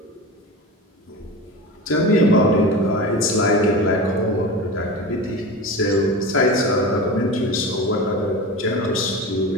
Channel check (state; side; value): normal; both; correlation 0.28